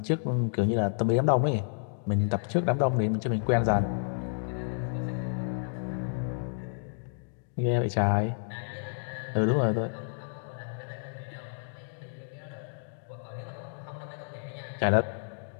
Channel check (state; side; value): silent; right; digital silence